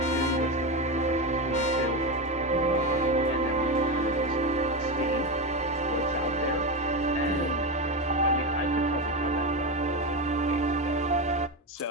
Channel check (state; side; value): normal; both; correlation 0.15